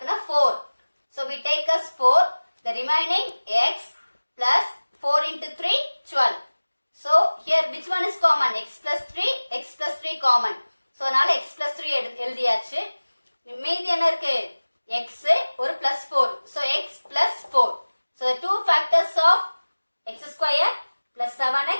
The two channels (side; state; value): both; inverted; correlation -1.00